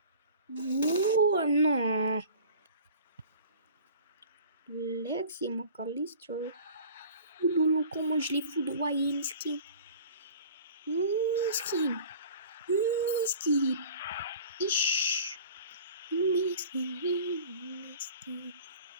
Oh non. Lexi McAllister. Oh lolo, comment je l'ai foudroyé, miskin. Miskin. Miskin. Ish. Miskin.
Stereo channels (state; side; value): inverted; both; correlation -0.44